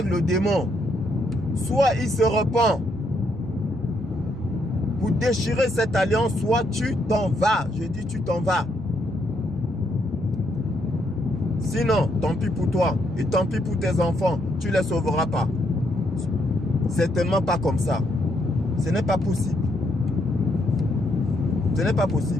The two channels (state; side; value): normal; both; correlation 0.75